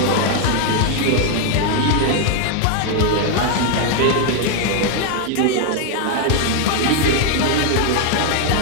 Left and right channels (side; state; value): both; different; correlation 0.01